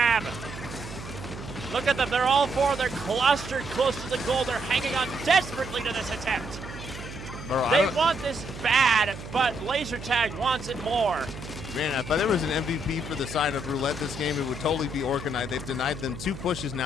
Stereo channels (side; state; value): right; noise; hum, 12 dB below the sound